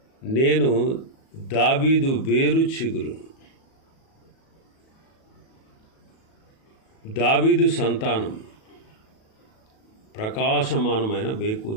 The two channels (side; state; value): right; late; 37 ms